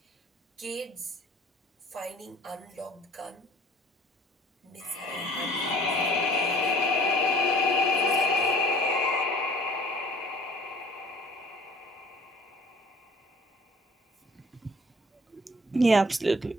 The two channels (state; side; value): normal; both; correlation 0.52